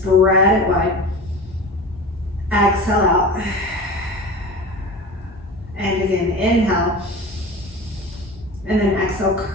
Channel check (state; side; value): normal; both; correlation 0.33